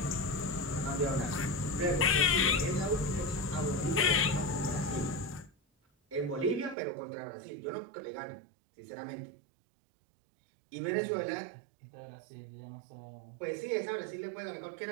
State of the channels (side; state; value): left; drops out; at 6.8 s